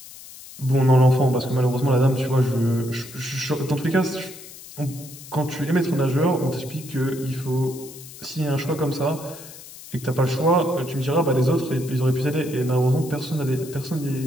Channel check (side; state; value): left; noise; hiss, 16 dB below the sound